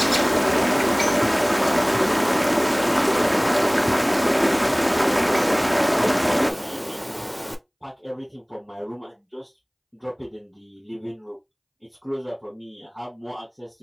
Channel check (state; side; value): identical; both; correlation 1.00